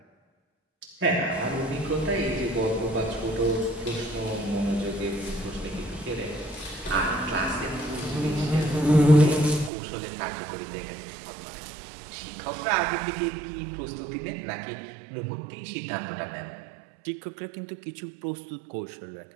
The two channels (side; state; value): left; drops out; at 9.7 s